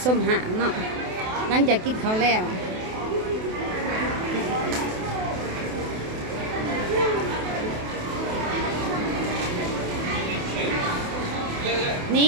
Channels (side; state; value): left; late; 28 ms